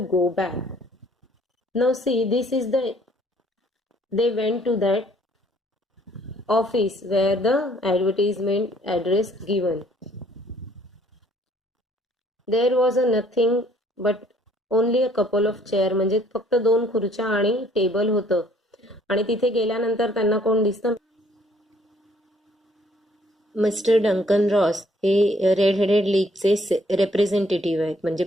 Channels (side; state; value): both; normal; correlation 0.62